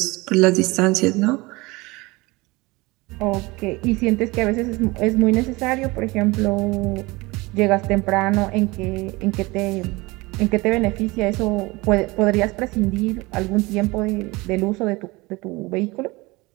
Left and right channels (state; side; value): quieter; left; 23.0 dB